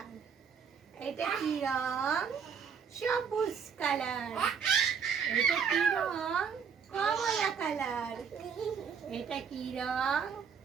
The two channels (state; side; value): quieter; left; 6.8 dB